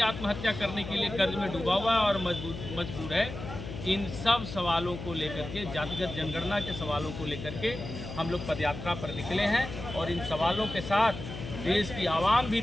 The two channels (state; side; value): noise; left; hum, 9 dB below the sound